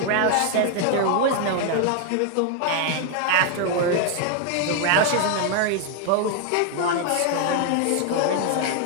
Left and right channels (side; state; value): both; different; correlation 0.00